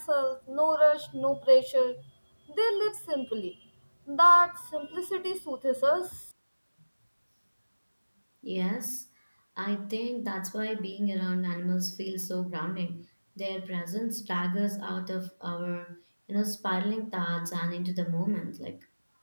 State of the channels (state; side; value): inverted; both; correlation -1.00